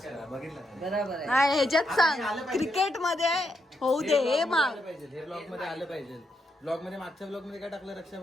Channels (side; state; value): both; normal; correlation 0.80